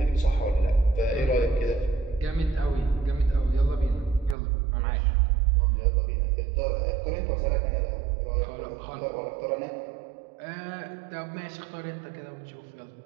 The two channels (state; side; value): drops out; left; at 4.4 s